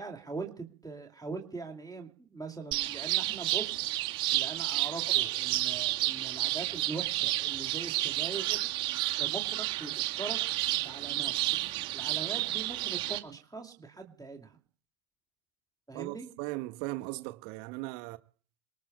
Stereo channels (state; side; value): quieter; left; 13.3 dB